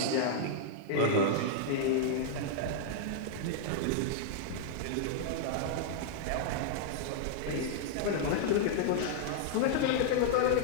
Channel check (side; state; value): both; different; correlation -0.01